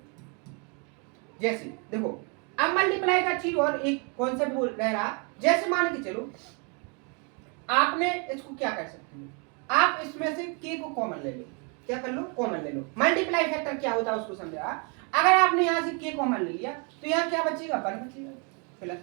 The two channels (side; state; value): left; quieter; 35.4 dB